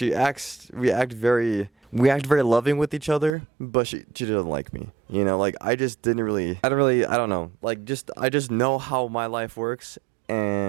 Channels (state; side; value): drops out; left; at 3.4 s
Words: act very loving with each other, but she doesn't like me. You know, like, I don't know. Like, I just know how my life works.